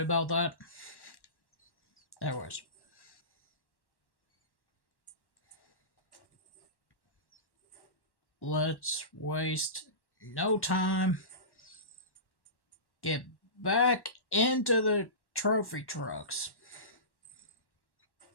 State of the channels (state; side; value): late; right; 1.1 ms